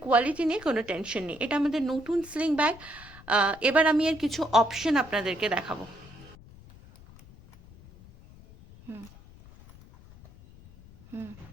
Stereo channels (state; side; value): noise; left; rumble, 21 dB below the sound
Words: কোয়ালিটি নিয়ে কোনো টেনশন নেই। এটা আমাদের নতুন স্লিং ব্যাগ। এবার আমি এর কিছু অপশন আপনাদেরকে দেখাবো। হুম হুম